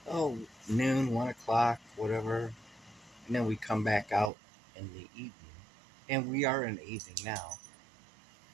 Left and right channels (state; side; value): drops out; left; at 4.3 s